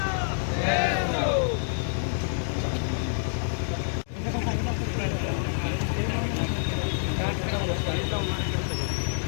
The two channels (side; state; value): right; silent; digital silence